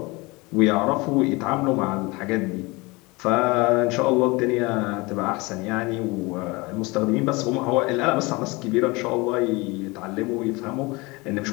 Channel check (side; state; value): right; quieter; 24.6 dB